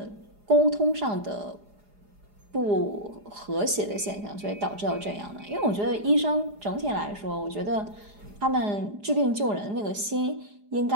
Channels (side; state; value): left; late; 4.9 ms